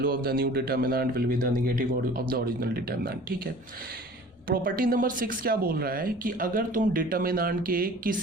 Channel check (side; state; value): both; normal; correlation 0.45